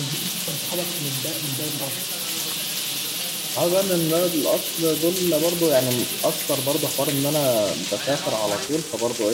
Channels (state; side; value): identical; both; correlation 1.00